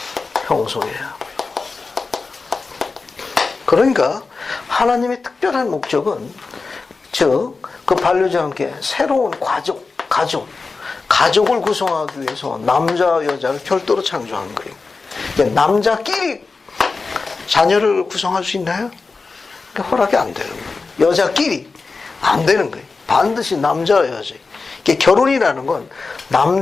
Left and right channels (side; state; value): right; quieter; 4.2 dB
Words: 형성해야 합니다. 그러니까 하나님의 특별한 목적은 즉 그 반려자와 함께 새로운 가족을 구성하기 위해서 남자와 여자를 별도로 창조한 거예요. 남자끼리 자녀를 구성할 수 있나요? 허락이 안 되는 거예요. 여자끼리 안 되는 거예요. 반드시 남자와 여자. 이게 결혼이라는 건